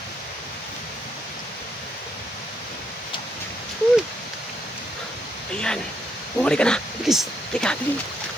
Ayan. Bumalik ka na. Bilis. Tika, bilis.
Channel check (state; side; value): normal; both; correlation 0.75